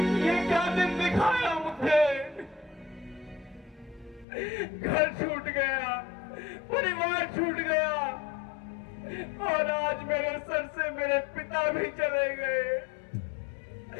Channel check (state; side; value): drops out; right; at 4.2 s